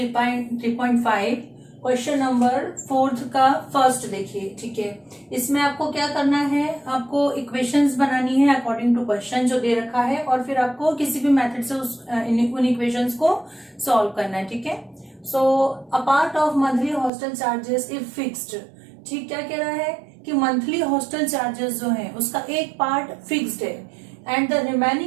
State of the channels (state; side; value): drops out; left; at 17.1 s